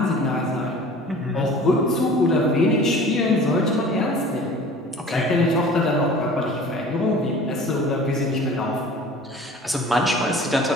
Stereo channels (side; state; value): both; normal; correlation 0.44